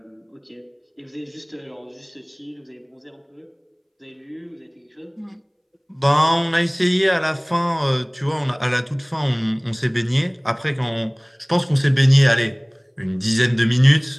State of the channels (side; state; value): both; identical; correlation 1.00